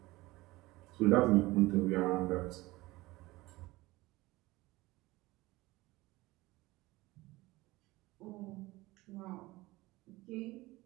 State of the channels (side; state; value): left; quieter; 20.0 dB